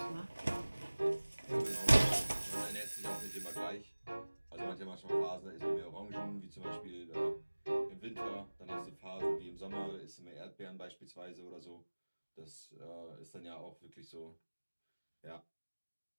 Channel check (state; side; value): inverted; both; correlation -1.00